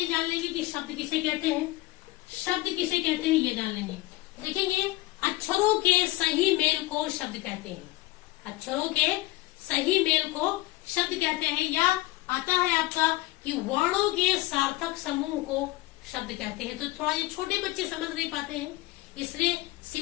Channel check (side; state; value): right; quieter; 18.9 dB